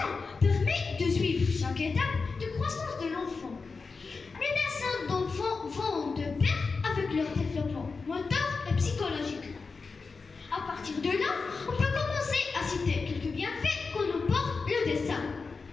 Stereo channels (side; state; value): right; quieter; 4.5 dB